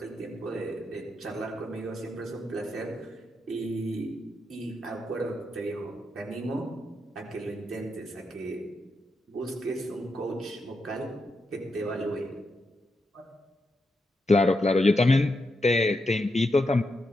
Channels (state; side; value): normal; both; correlation 0.84